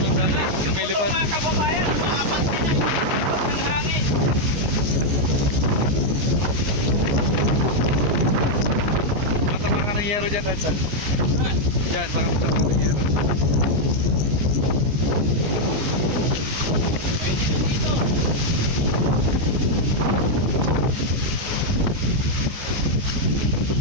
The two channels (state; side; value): late; left; 14 ms